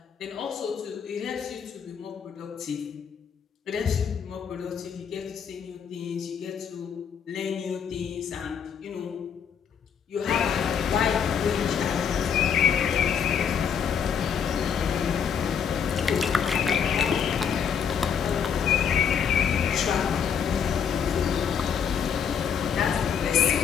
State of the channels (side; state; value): right; quieter; 7.4 dB